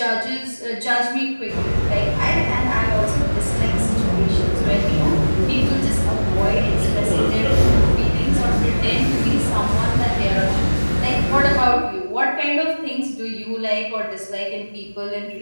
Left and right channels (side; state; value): both; inverted; correlation -1.00